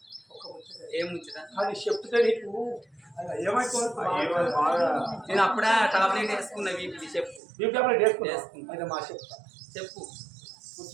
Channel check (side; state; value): left; drops out; at 7.4 s